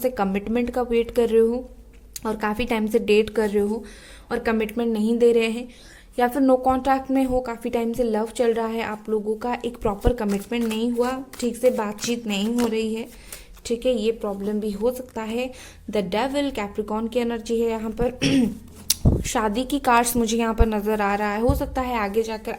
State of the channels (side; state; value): both; identical; correlation 1.00